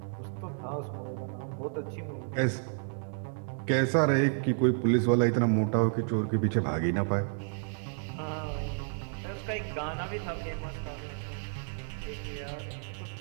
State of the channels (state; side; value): silent; left; digital silence